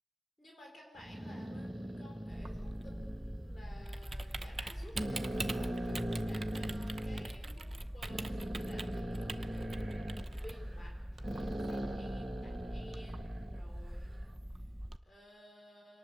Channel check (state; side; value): normal; both; correlation 0.96